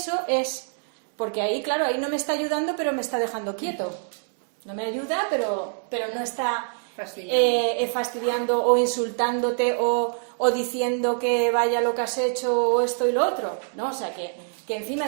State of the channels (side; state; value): left; silent; digital silence